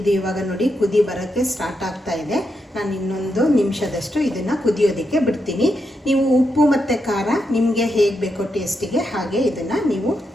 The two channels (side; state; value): both; normal; correlation 0.84